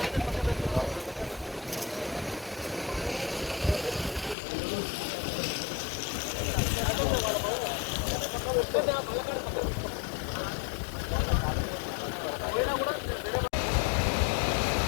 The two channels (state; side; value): drops out; right; at 4.4 s